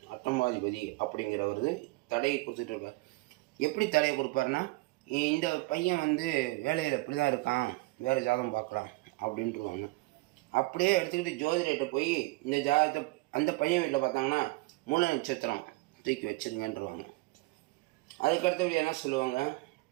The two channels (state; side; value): quieter; left; 22.5 dB